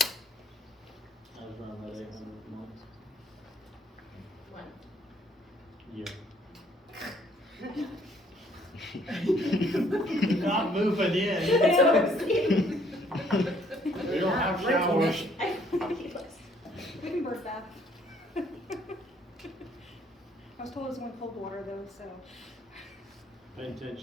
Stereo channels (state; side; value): normal; both; correlation 0.64